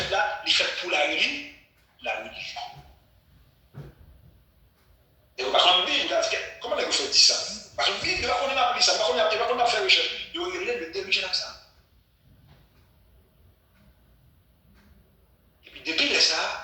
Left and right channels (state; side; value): identical; both; correlation 1.00